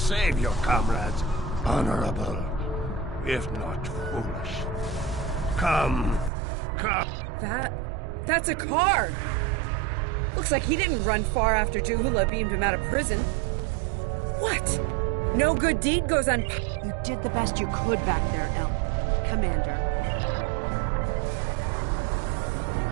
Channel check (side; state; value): left; drops out; at 6.3 s